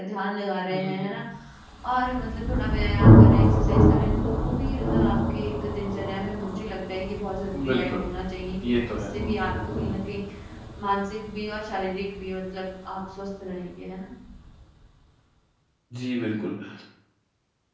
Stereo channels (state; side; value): identical; both; correlation 1.00